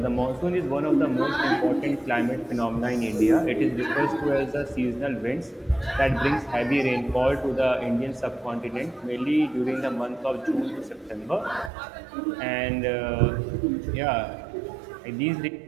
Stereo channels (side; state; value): left; drops out; at 11.7 s